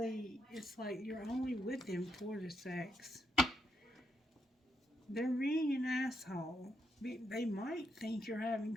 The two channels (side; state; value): both; normal; correlation 0.80